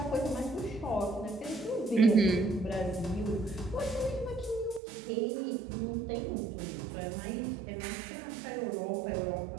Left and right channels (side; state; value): left; drops out; at 4.8 s